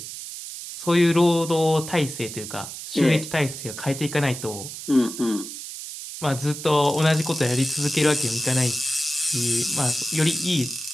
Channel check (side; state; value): right; noise; hiss, 10 dB below the sound